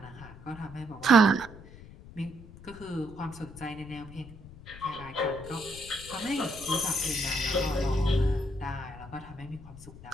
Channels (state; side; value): noise; left; rumble, 17 dB below the sound